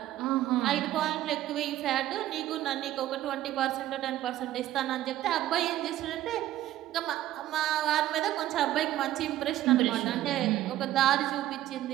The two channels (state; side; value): quieter; left; 13.9 dB